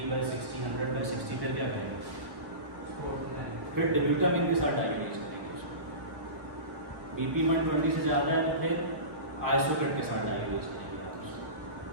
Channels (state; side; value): late; left; 1.3 ms